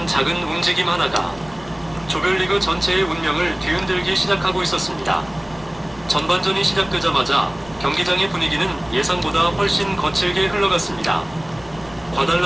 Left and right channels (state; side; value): noise; left; rumble, 23 dB below the sound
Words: 작은 움직임 하나가 조별리그 전체의 운명을 뒤흔들기 시작하고 있었습니다. 전반전이 시작되자마자 경기장의 분위기는 예상보다 훨씬 거칠게 흘러갔습니다.